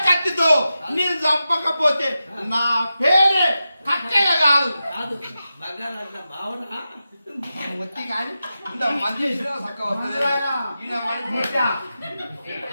కత్తితో నేను చంపకపోతే నా పేరే కక్కయ్య కాదు. వచ్చి కానీ ఇంత మంది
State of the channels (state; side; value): inverted; both; correlation -0.91